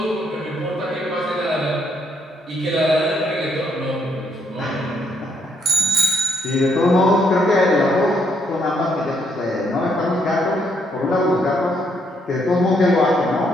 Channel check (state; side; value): normal; both; correlation 0.73